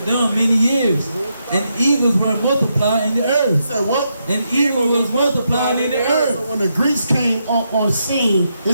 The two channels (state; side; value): inverted; both; correlation -0.82